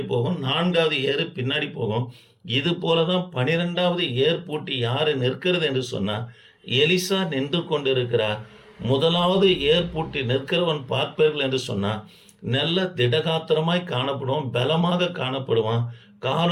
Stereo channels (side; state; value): both; identical; correlation 1.00